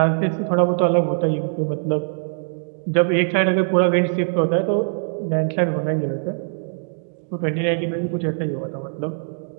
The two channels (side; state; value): left; silent; digital silence